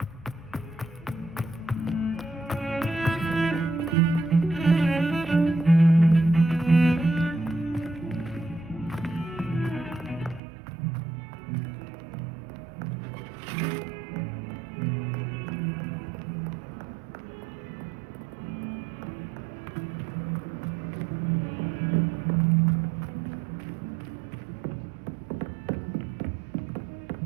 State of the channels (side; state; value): left; drops out; at 10.4 s